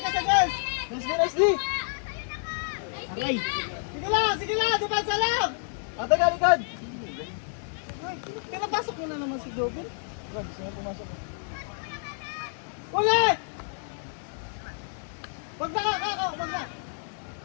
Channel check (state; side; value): silent; right; digital silence